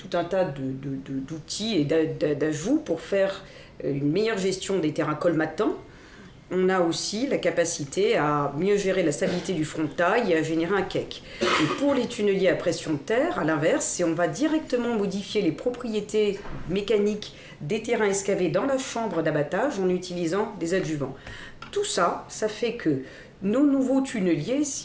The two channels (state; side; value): identical; both; correlation 1.00